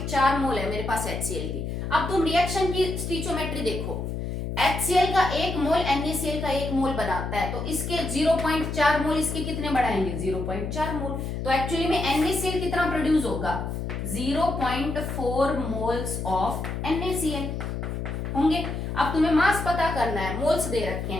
मोल है मेरे पास HCl की। अब तुम रिएक्शन की स्टिचोमेट्री देखो, HCl का 1 मोल NaCl का 1 मोल बनाता है, तो इसके 0.4 मोल इसके कितने बढ़ाएंगे, 0.4 मोल। तो एक्चुअली में NaCl कितना प्रोड्यूस होगा, 0.4 मोल्स ऑफ NaCl होंगे। अब तुम्हें मास पता करना है, मोल्स दे रखे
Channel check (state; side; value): noise; left; hum, 4 dB below the sound